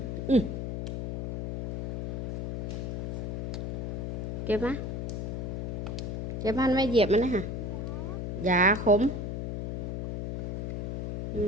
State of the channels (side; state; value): left; noise; hum, 4 dB below the sound